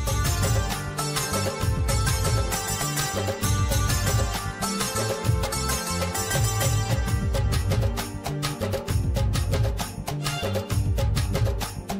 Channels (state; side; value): identical; both; correlation 1.00